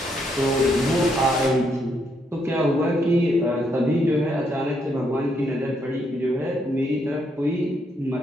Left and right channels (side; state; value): both; normal; correlation 0.75